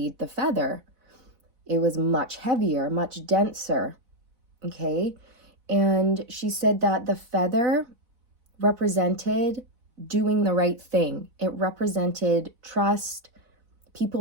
the feather. It was much heavier, much denser, okay? And she said that the feather represented doing the right thing. It represented trust,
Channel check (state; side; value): late; left; 4.0 ms